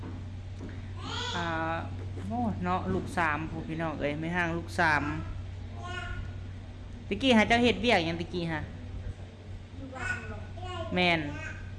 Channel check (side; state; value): both; identical; correlation 1.00